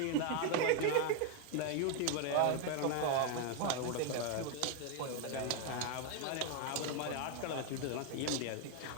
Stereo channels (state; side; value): different; both; correlation 0.01